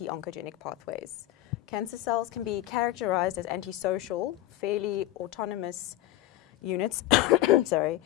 pathways. Cancer cells can be characterized as antisocial, fairly autonomous units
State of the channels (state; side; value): quieter; right; 15.0 dB